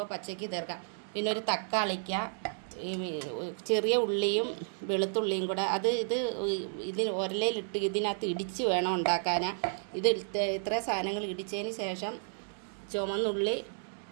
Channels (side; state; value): left; silent; digital silence